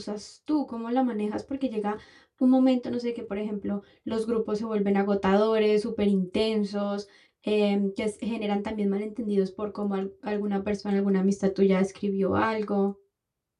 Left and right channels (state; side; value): identical; both; correlation 1.00